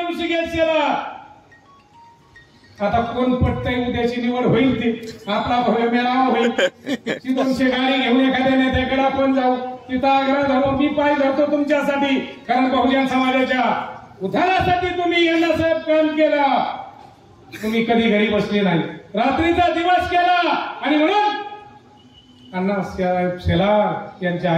ऋषिकेश शेलार, आता कोण पटतंय, उद्याची निवड होईल ती आपला भव्य मेळावा होईल. ती 200 गाडी घेऊन एखाद्या नेत्याकडे आपण जाऊ, तिथं आग्रह धरू, मी पाय धरतो तुमच्यासाठी, कारण बहुजन समाजाच्या उद्धारासाठी तुम्ही अण्णासाहेब काम केलं. तुम्ही कधी घरी बसले नाही, रात्रीचा दिवस केला. आणि म्हणून अण्णासाहेब शेलार यांच्या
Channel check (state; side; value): identical; both; correlation 1.00